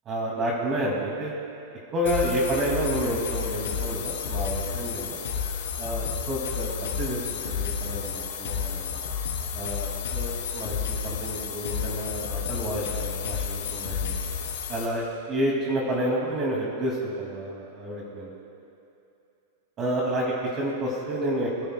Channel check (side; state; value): both; normal; correlation 0.05